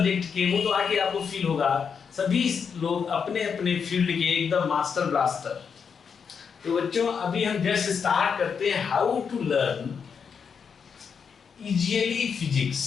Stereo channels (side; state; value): right; quieter; 6.4 dB